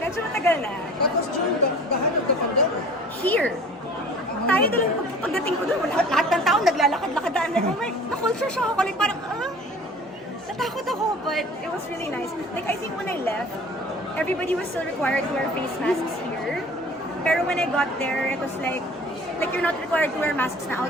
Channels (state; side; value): normal; both; correlation 0.45